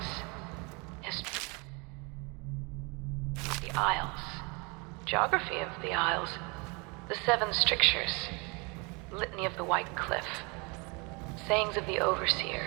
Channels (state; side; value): quieter; left; 30.0 dB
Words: History. The Isles. Geography of the Isles. The Seven Strictures. Litany of the White Cliff. Sayings of the